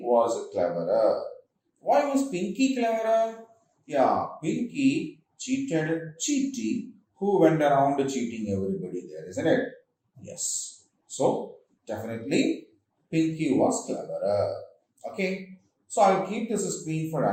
was cleverer. Why was Pinky cleverer? Yeah, Pinky cheated Cheaty, who went around cheating everybody there, isn't it? Yes. So, definitely Pinky was cleverer. Okay. So, I'll keep this screen for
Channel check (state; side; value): identical; both; correlation 1.00